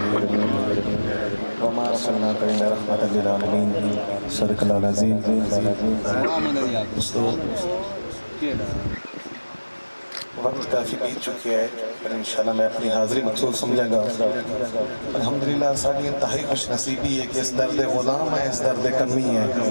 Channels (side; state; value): both; inverted; correlation -1.00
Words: वक्त काफ़ी बीत चुकी है, पर इंशाल्लाह मैं अपनी हाज़िरी मकसूद समझांगा। अल्हम्दुलिल्लाह साडी इंतहाई खुश नसीबी है कि इस दर्द गुलाम है, इस दर्द कमी है